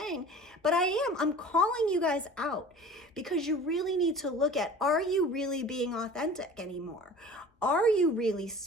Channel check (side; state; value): both; normal; correlation 0.41